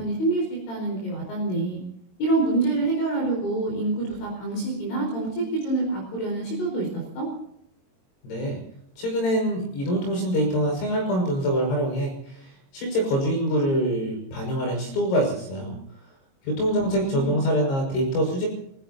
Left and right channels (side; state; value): right; late; 22 ms